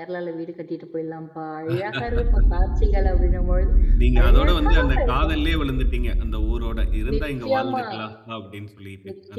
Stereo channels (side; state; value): both; identical; correlation 1.00